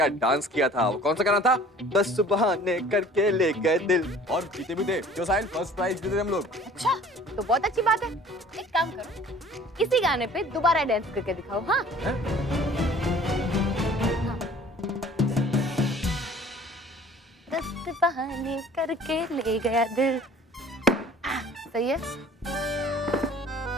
डांस किया था, वो कौन सा गाना था? 10 बहाने करके ले गए दिल, और जीते भी थे। क्यों साहिल, फर्स्ट प्राइज जीते थे हम लोग। अच्छा, तो बहुत अच्छी बात है। एक काम करो, इसी गाने पे दोबारा डांस करके दिखाओ। हाँ, हाँ। 10 बहाने करके ले गया दिल। सही है।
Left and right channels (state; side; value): normal; both; correlation 0.49